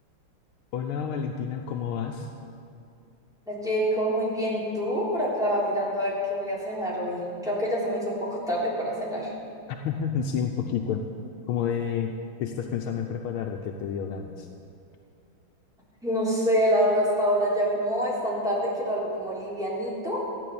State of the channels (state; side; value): normal; both; correlation 0.12